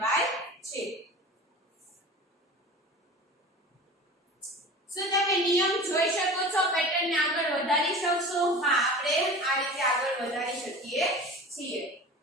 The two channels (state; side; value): normal; both; correlation 0.36